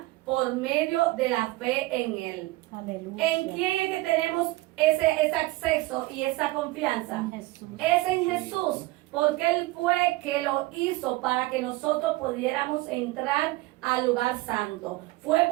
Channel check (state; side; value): quieter; left; 20.2 dB